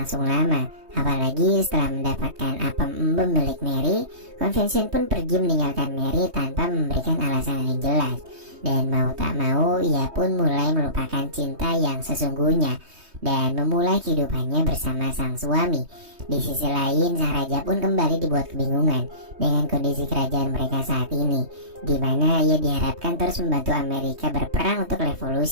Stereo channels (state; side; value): late; left; 3.2 ms